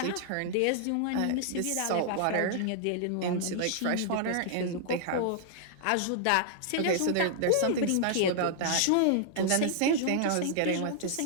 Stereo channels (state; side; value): different; both; correlation -0.01